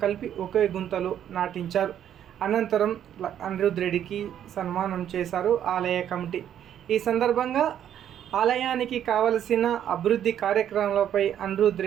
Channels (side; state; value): left; quieter; 10.1 dB